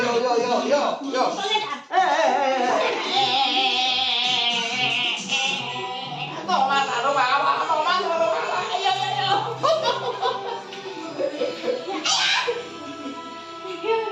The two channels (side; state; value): both; identical; correlation 1.00